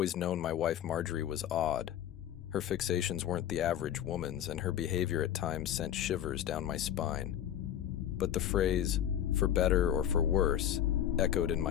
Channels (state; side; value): quieter; right; 10.7 dB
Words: known my wife Margery was odd. Her fixations weren't the average woman's, and her behavior at times sent shivers down my spine. But the phrase, for better or for worse, echoed in